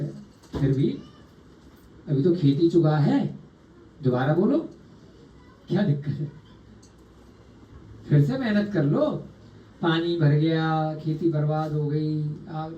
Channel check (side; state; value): both; identical; correlation 1.00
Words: है, फिर भी अभी तो खेती चुगा है, दोबारा बोलो क्या दिक्कत है, फिर से मेहनत कर लो। पानी भर गया, खेती बर्बाद हो गई,